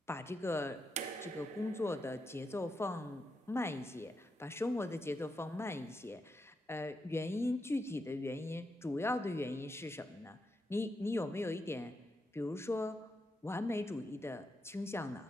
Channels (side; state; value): both; normal; correlation 0.84